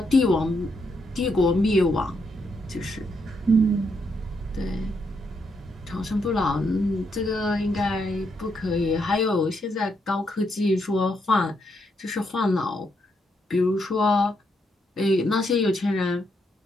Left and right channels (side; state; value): both; normal; correlation 0.78